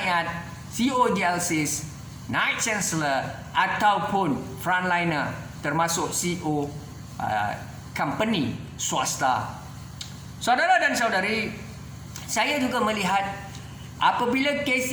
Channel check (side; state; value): both; identical; correlation 1.00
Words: CEO JLCs, Night Chancellor ataupun frontliner, termasuk CEO company swasta. Saudara dan saudari, saya juga melihat apabila kes